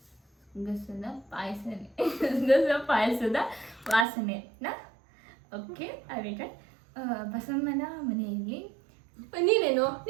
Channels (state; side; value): drops out; left; at 4.0 s